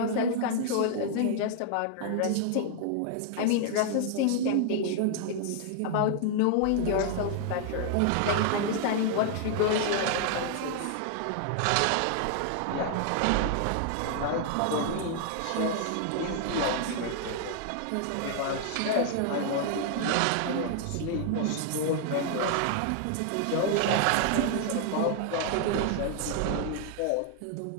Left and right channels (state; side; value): different; both; correlation 0.00